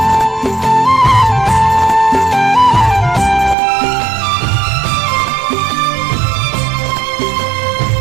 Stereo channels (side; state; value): left; drops out; at 3.6 s